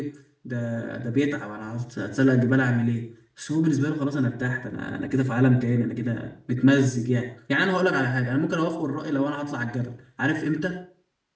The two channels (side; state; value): both; identical; correlation 1.00